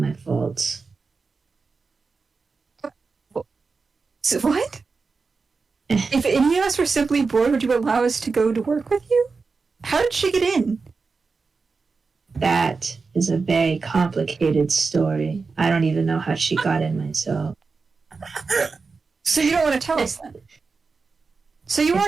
fault. So what? If any of us were simply bored, would you allow us to go to work with you? How did she get in? That is a very complicated story. I don't even know how she got in myself. So you don't want to tell us then? So you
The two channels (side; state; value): left; quieter; 4.5 dB